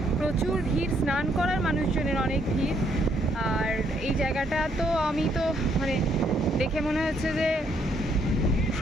প্রচুর ভিড়, স্নান করার মানুষজনের অনেক ভিড়। আর এই জায়গাটা তো আমি তো মানে দেখে মনে হচ্ছে যে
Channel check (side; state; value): both; normal; correlation 0.71